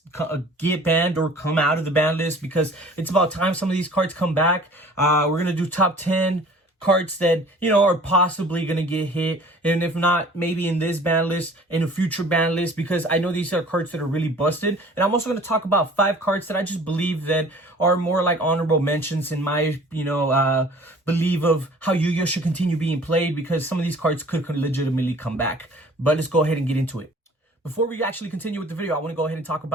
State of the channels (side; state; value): both; normal; correlation 0.49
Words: get banned or come out of the BanList, because it's about time some of these cards come back. We're going to do top 10 cards that, are possibly going to get hit, and if not, maybe in this ban list, in a future ban list, because I know these are cards that are really busted. And I'm also going to talk about 5 cards that I just believe that are more like honorable mentions in my, belief of how YuGiOh should continue being played, because some of these cards could legitimately come back. But let's go ahead and get into it. Before we actually continue with the video, I want to go ahead and talk